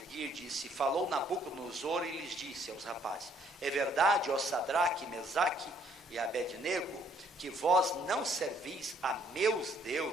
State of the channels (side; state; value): both; normal; correlation 0.64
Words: disse: falou Nabucodonosor e lhes disse aos rapazes: é verdade, ó Sadraque, Mesaque e Abednego, que vós não servis a meus